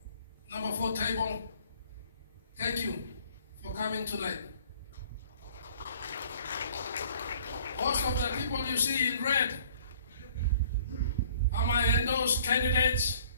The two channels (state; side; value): inverted; both; correlation -0.55